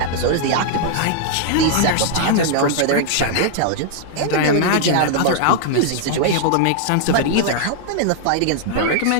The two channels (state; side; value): different; both; correlation -0.01